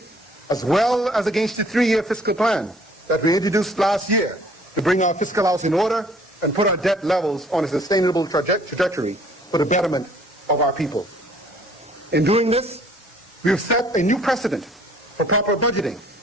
as well as against the 3-year fiscal plan that we introduced last year to bring our fiscal house in order and put our debt levels on a sustainable trajectory for the betterment of our people. In doing this, we have set a new precedent for proper budgeting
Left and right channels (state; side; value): normal; both; correlation 0.57